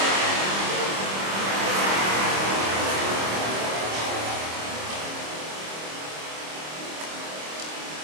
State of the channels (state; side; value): late; left; 26 ms